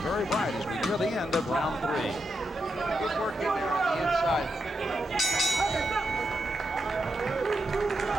bright as we near the end of round 3. Good work in there on the inside.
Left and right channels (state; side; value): normal; both; correlation 0.85